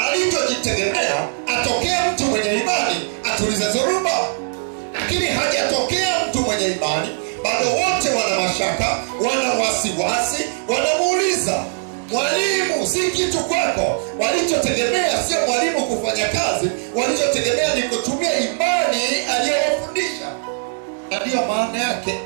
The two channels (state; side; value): silent; left; 66 dB below the other